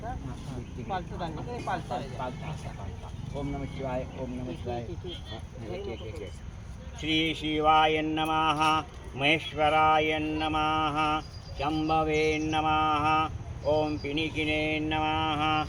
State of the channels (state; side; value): identical; both; correlation 1.00